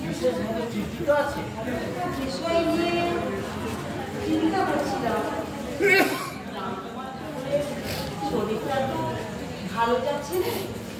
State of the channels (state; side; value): identical; both; correlation 1.00